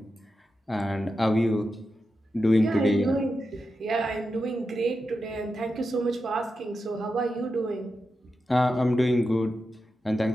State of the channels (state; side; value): normal; both; correlation 0.89